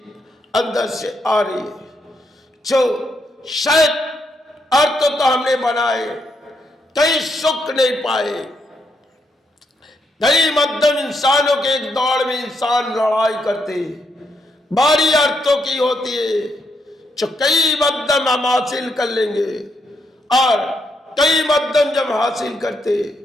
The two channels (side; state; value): both; normal; correlation 0.78